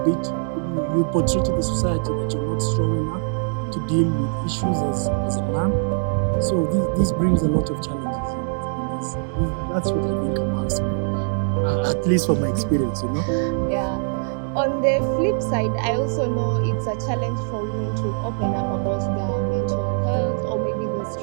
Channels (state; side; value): silent; left; digital silence